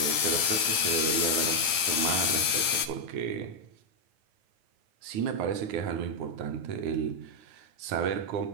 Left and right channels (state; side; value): late; left; 9.4 ms